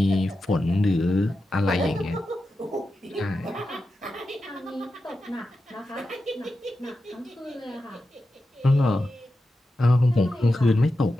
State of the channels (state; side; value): normal; both; correlation 0.90